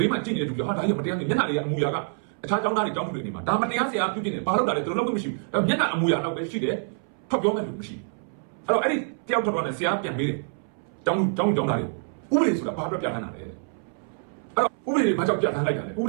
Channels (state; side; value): silent; left; 61 dB below the other